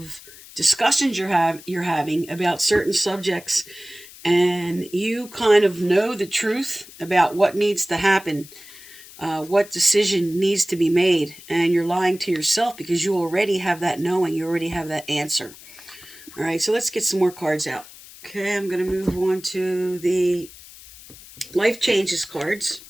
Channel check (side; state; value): left; noise; hiss, 19 dB below the sound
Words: discussions you're having about certain subjects, and you kind of know the truth about what needs to happen, what decision needs to be made, and you're lying to yourself because you already have that knowing, you already have that answer. All right, so let's get some more cards out. Okay, I'm going to move on to the life changes cards.